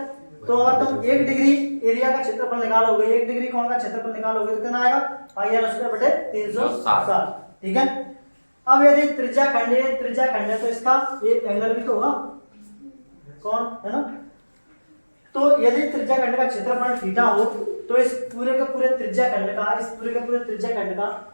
तो अगर तुम 1 डिग्री एरिया का क्षेत्रफल निकालोगे, 1 डिग्री कोण का क्षेत्रफल निकालोगे तो कितना आएगा, पाई आर स्क्वायर बटे 360। ठीक है। अब यदि त्रिज्या खंड है तो इसका ये एंगल भी तो होगा, कौन है ना। तो यदि त्रिज्या खंड का क्षेत्रफल थीटा हो तो इस पूरे के पूरे त्रिज्या खंड का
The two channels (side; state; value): both; inverted; correlation -1.00